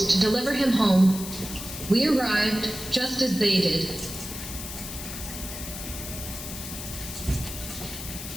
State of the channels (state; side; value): noise; left; hiss, 9 dB below the sound